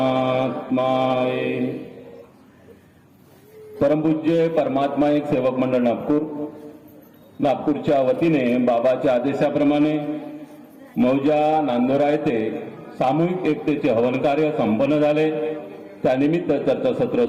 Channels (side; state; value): both; identical; correlation 1.00